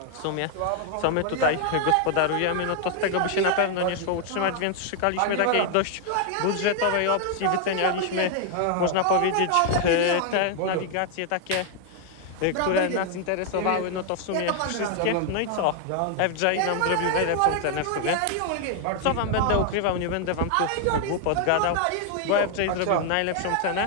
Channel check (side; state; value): both; different; correlation 0.00